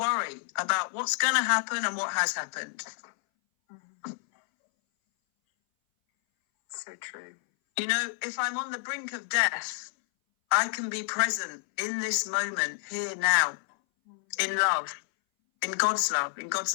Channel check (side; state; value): right; silent; 59 dB below the other